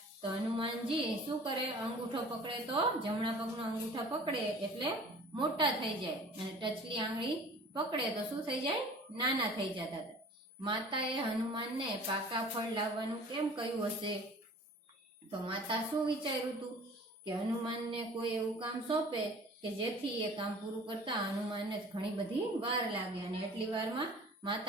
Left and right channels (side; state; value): both; normal; correlation 0.46